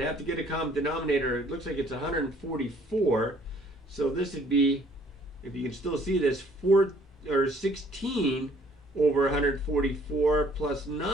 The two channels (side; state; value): both; normal; correlation 0.60